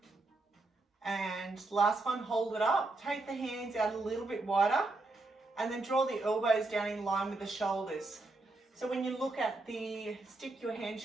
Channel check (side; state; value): left; quieter; 3.1 dB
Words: And last one, hold it up. Take the hands out a little bit wider and then draw the elbows down in line with the shoulders. So when you look at the stick, your hand